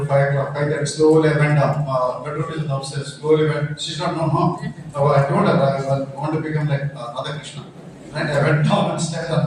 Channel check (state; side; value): identical; both; correlation 1.00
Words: 5 o'clock, 5:30, slowly I went down. Bedroom is downstairs, slowly went. She's not known, huh? So I told her I want to become like Radhakrishnan. Right? I went down and stayed on